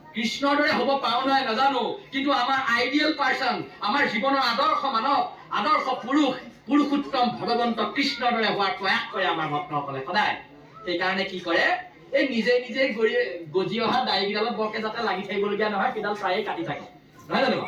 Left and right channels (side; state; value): both; identical; correlation 1.00